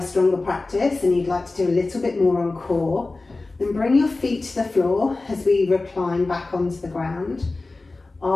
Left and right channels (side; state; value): right; quieter; 3.4 dB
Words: stronger practice and you'd like to do a little bit more on core, then bring your feet to the floor as we recline back onto the ground.